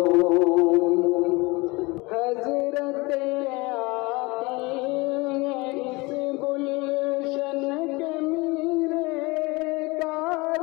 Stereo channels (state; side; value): quieter; right; 24.3 dB